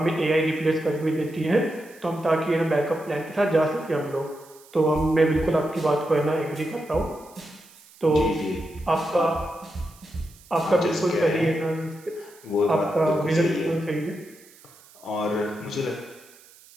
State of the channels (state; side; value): noise; right; hiss, 25 dB below the sound